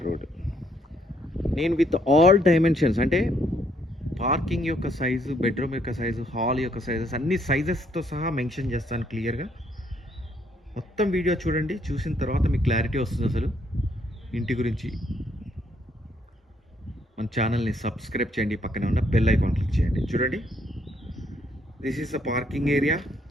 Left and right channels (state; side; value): normal; both; correlation 0.70